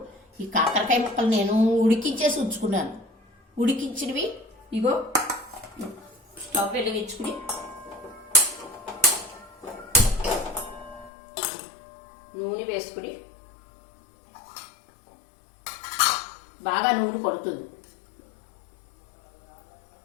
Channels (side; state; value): right; drops out; at 11.1 s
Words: ఈ కాకరకాయ ముక్కలు నేను ఉడికించేసి ఉంచుకున్నాను. ఉడికించినవి ఇగో స్టవ్ వెలిగించుకుని నూనె వేసుకుని బాగా నూనె పడుతుంది.